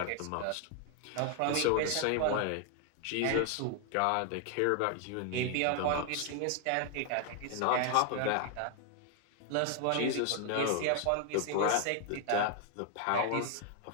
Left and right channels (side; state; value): both; different; correlation 0.00